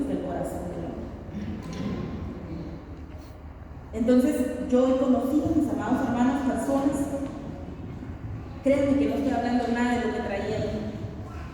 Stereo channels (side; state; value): both; identical; correlation 1.00